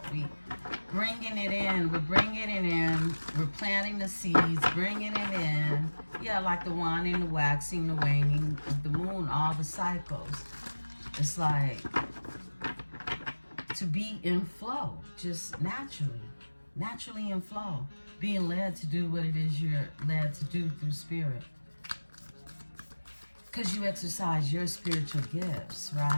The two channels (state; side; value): inverted; both; correlation -1.00